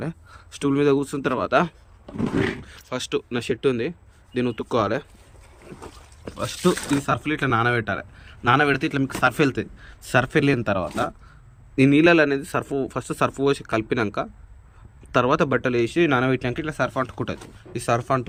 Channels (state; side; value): identical; both; correlation 1.00